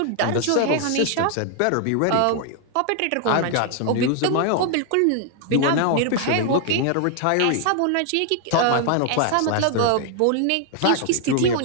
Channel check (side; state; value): both; different; correlation 0.00